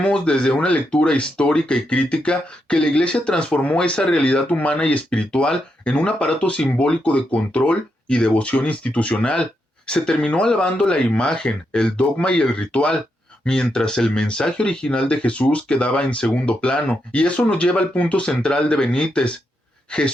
desde una lectura histórica y crítica que la Iglesia transformó esa realidad humana y espiritual en un aparato simbólico de control y devoción institucional. Se terminó alabando la imagen, el dogma y el ritual, mientras el mensaje original de Jesús quedaba en segundo plano. Y eso nos lleva al punto central de Benítez.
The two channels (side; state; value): both; normal; correlation 0.82